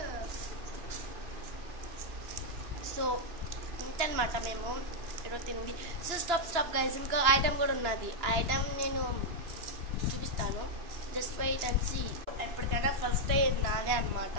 సో ఇంతనమాట మేము ఈరోజు తింది. సో స్టాప్ గైస్, ఇంకా ఐటమ్ కూడా ఉన్నది. ఆ ఐటమ్ నేను చూపిస్తాను. Just wait and see. ఎప్పటికైనా ఫస్ట్ అయ్యేది నాదే అనమాట.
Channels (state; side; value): late; left; 2.9 ms